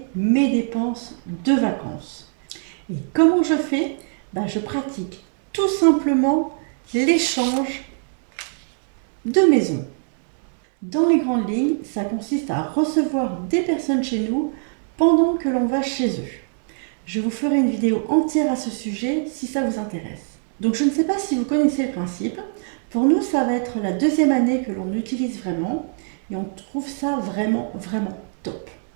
mes dépenses de vacances. Et comment je fais? Je pratique tout simplement l'échange de maisons. Dans les grandes lignes, ça consiste à recevoir des personnes chez nous pendant que l'on va chez eux. Je vous ferai une vidéo entière à ce sujet si ça vous intéresse. Donc je ne sais pas si vous connaissez le principe. Pour nous, ça va être la deuxième année que l'on utilise vraiment et on trouve ça vraiment top.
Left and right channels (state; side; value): silent; left; 64 dB below the other